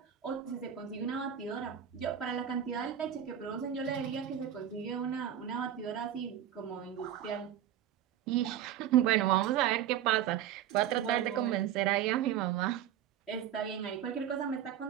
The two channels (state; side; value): quieter; left; 10.4 dB